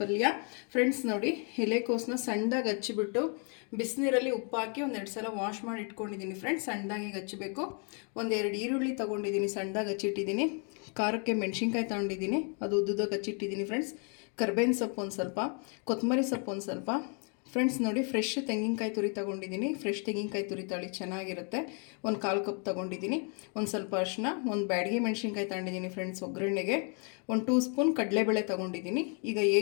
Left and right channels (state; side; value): quieter; right; 39.3 dB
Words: ಫ್ರೆಂಡ್ಸ್ ನೋಡಿ, ಎಲೆಕೋಸನ್ನ ಸಣ್ಣದಾಗಿ ಹಚ್ಚಿಬಿಟ್ಟು ಬಿಸಿನೀರಲ್ಲಿ ಉಪ್ಪು ಹಾಕಿ ಒಂದೆರಡು ಸಲ ವಾಶ್ ಮಾಡಿ ಇಟ್ಕೊಂಡಿದ್ದೀನಿ. ಫ್ರೆಂಡ್ಸ್, ಸಣ್ಣದಾಗಿ ಹಚ್ಚಬೇಕು. ಒಂದೆರಡು ಈರುಳ್ಳಿ ತೊಗೊಂಡಿದ್ದೀನಿ, ಸಣ್ಣದಾಗಿ ಹಚ್ಚಿಟ್ಟಿದ್ದೀನಿ. ಖಾರಕ್ಕೆ ಮೆಣಸಿನ್ಕಾಯಿ ತೊಗೊಂಡಿದ್ದೀನಿ, ಅದು ಉದ್ದುದಾಗಿ ಹಚ್ಚಿಟ್ಟಿದ್ದೀನಿ. ಫ್ರೆಂಡ್ಸ್, ಕರ್ಬೇವಿನ ಸೊಪ್ಪು ಒಂದು ಸ್ವಲ್ಪ, ಕೊತ್ತಂಬರಿ ಸೊಪ್ಪು ಒಂದು ಸ್ವಲ್ಪ. ಫ್ರೆಂಡ್ಸ್ ನೋಡಿ, ಫ್ರೆಶ್ ತೆಂಗಿನಕಾಯಿ ತುರಿ ತೊಗೊಂಡಿದ್ದೀನಿ. ಫ್ರೆಶ್ ತೆಂಗಿನಕಾಯಿ ತುರಿ ತಳಿ ಚೆನ್ನಾಗಿರುತ್ತೆ. ಒಂದು 1/4 ಕಪ್ ತೊಗೊಂಡಿದ್ದೀನಿ. ಒಂದು ಸ್ವಲ್ಪ ಅರಿಶಿನ, ಒಂದು ಬ್ಯಾಡಗಿ ಮೆಣಸಿನ್ಕಾಯಿ ತೊಗೊಂಡಿದ್ದೀನಿ. ಫ್ರೆಂಡ್ಸ್, ಒಗ್ಗರಣೆಗೆ 1 2 ಸ್ಪೂನ್ ಕಡಲೆಬೇಳೆ ತೊಗೊಂಡಿದ್ದೀನಿ. ಈಗ